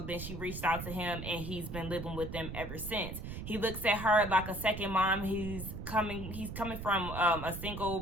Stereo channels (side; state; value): right; noise; rumble, 8 dB below the sound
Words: then she reached out to him, and he's been living with them ever since. He looks at her like a second mom. He's coming from a